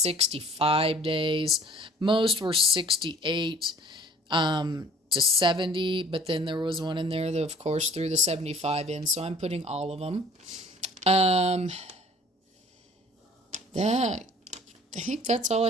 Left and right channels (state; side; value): normal; both; correlation 0.52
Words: days. Most were 68 to 70, but then there was one in there that, of course, threw the 75 in, so I'm putting all of them. I think that's all